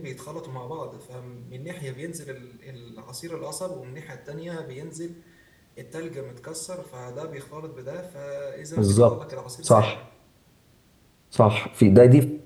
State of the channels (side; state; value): both; identical; correlation 1.00